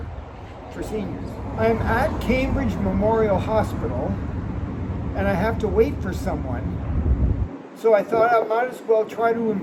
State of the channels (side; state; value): both; identical; correlation 1.00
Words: for Seniors. I'm at Cambridge Memorial Hospital and I have to wait for someone. So I thought I might as well try to